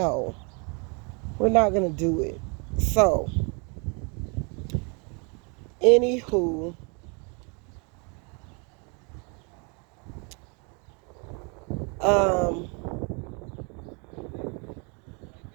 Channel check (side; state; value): left; quieter; 34.0 dB